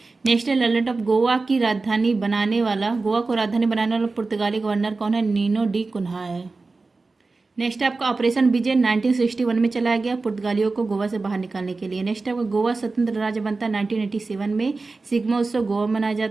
नेशनल आइलैंड ऑफ गोवा की राजधानी बनाने वाला गोवा को राजधानी बनाने वाला पुर्तगाली गवर्नर कौन है? नीनो डी कुन्हा है। नेक्स्ट आपका ऑपरेशन विजय 1961 में चलाया गया पुर्तगालियों को गोवा से बाहर निकालने के लिए। नेक्स्ट आपका गोवा स्वतंत्र राज्य बनता है 1987 में। सिग्मा उत्सव गोवा मनाया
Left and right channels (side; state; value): left; quieter; 3.8 dB